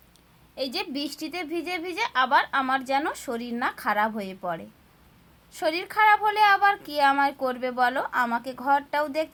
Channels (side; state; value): both; identical; correlation 1.00